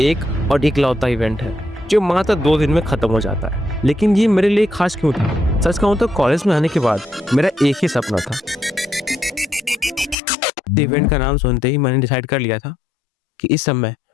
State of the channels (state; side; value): drops out; right; at 10.2 s